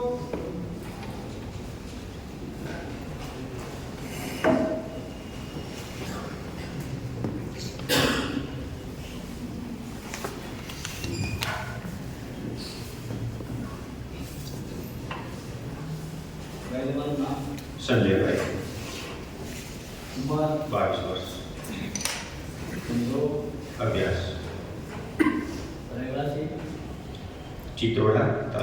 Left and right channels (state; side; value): identical; both; correlation 1.00